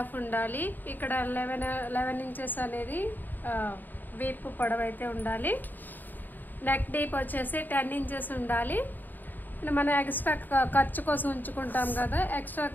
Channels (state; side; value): late; right; 0.089 ms